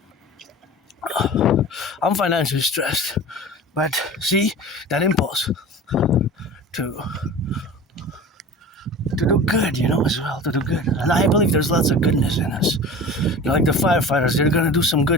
but see, that impulse to do good, as well, to do good. And I believe there's lots of goodness in us. Like the firefighters, they're going to do some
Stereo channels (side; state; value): both; normal; correlation 0.37